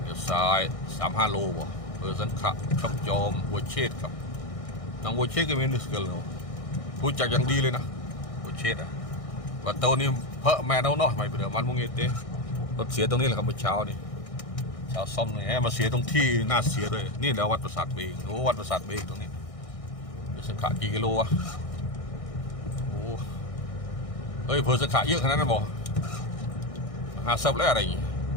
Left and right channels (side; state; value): right; late; 1.6 ms